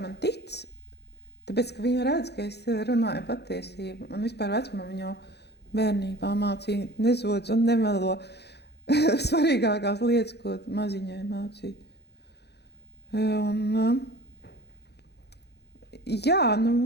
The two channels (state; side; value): late; right; 0.48 ms